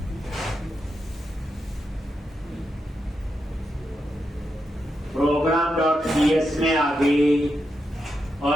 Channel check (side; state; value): both; normal; correlation 0.85